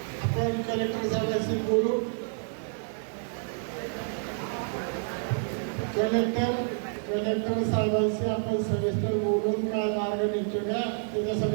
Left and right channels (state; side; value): silent; left; 59 dB below the other